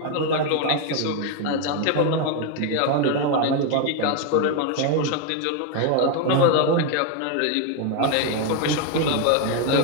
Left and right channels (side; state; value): both; different; correlation 0.01